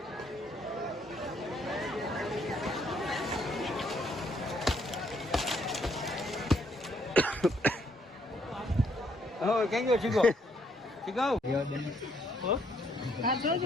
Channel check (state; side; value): normal; both; correlation 0.69